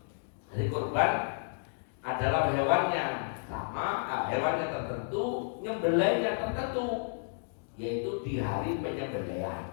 Jadi kurban adalah hewan yang sama, hewan yang tertentu, nyembelihnya tertentu, yaitu di hari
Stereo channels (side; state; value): right; silent; digital silence